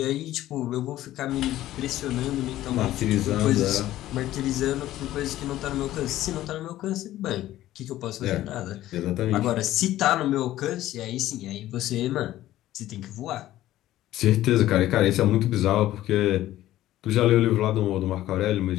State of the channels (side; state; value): right; quieter; 14.3 dB